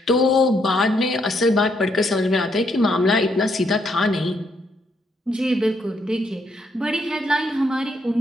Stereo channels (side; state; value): both; normal; correlation 0.75